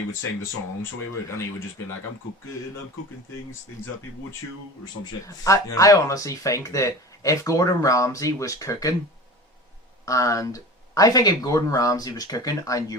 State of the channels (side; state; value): both; normal; correlation 0.34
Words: would sing the song, so he would just be like, I'm cooking things that people would chew, or some shit. I honestly think that if Gordon Ramsay was cooking, and I think if Gordon Ramsay was cooking and